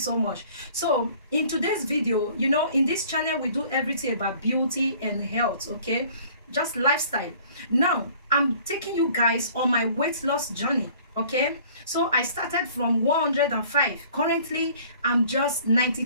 much. So in today's video, you know, in this channel we do everything about beauty and health, okay, just lifestyle. Now I'm taking you guys on my weight loss journey. Okay, so I started from 105. Currently I'm just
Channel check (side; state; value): both; inverted; correlation -0.52